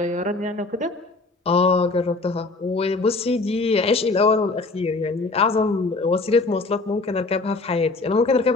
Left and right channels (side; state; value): right; quieter; 3.5 dB